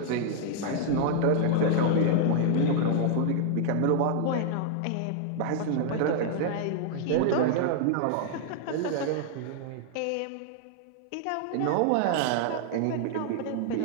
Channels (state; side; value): different; both; correlation 0.00